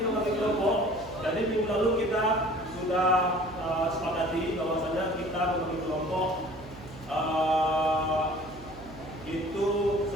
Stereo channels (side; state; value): right; noise; hum, 18 dB below the sound